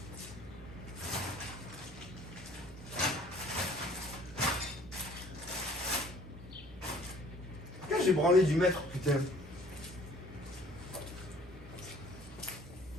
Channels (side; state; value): right; noise; hum, 15 dB below the sound